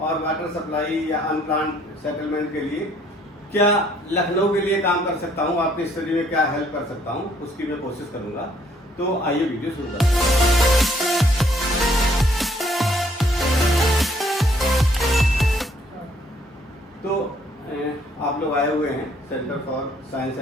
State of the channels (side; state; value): both; normal; correlation 0.65